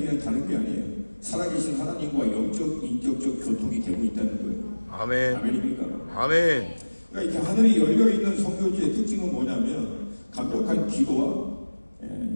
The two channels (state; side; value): inverted; both; correlation -1.00